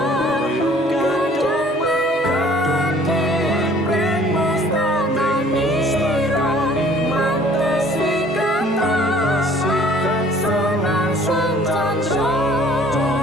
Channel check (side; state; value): both; normal; correlation 0.54